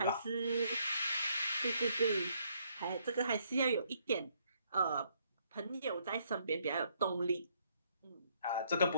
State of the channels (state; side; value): inverted; both; correlation -0.70